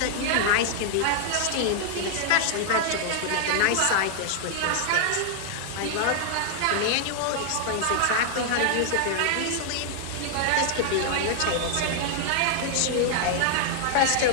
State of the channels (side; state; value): both; different; correlation -0.01